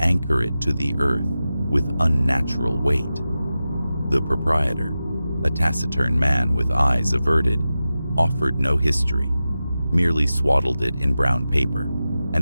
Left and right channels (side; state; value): both; inverted; correlation -0.93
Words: it to the earth with unnatural weight. The proprietor, a taciturn man with eyes averted, offered no history, merely swaddled it in brown paper